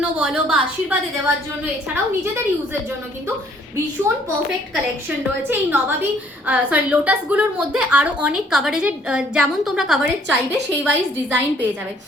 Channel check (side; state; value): both; normal; correlation 0.62